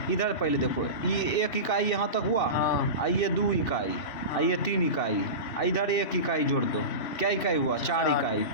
इधर पहले देखो, ये 1 इकाई यहाँ तक हुआ, ये 2 इकाई, ये 3 इकाई, इधर 1 इकाई जोड़ दो, क्या इकाई हुआ, 4 इकाई।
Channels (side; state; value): right; late; 3.1 ms